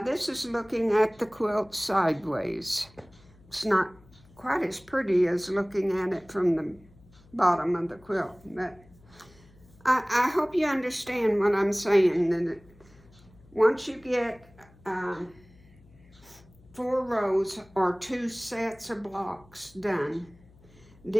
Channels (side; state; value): left; noise; hum, 26 dB below the sound